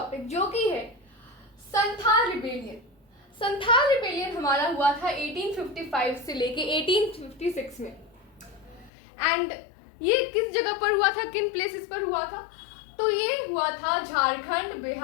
जो कि है संथाल रिबेलियन। संथाल रिबेलियन हमारा हुआ था 1855 से लेके 1856 में। एंड ये किस जगह पर हुआ था, किन प्लेसेस पर हुआ था? तो ये हुआ था झारखंड,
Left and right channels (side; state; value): right; drops out; at 8.9 s